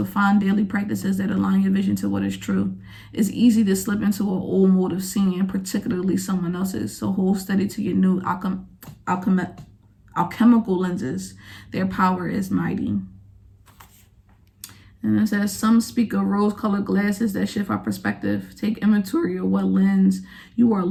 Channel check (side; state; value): both; identical; correlation 1.00